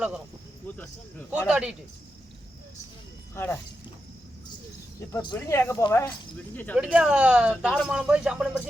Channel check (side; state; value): both; normal; correlation 0.88